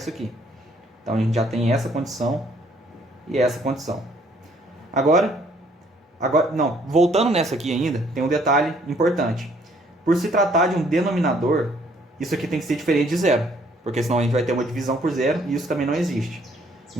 aqui. Então a gente já tem essa condição e essa condição. Voltando nessa aqui ainda, tem um detalhe importante. Por se tratar de um denominador, isso aqui tem que ser diferente de 0, porque senão a gente vai ter uma divisão por 0 e isso também não existe.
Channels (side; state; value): both; normal; correlation 0.63